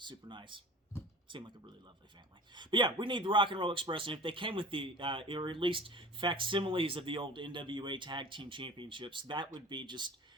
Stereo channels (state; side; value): normal; both; correlation 0.40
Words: nice. Seemed like a really lovely family. But yeah, we need the Rock and Roll Express, and if they came with or at least facsimiles of the old NWA Tag Team Championships, that would be just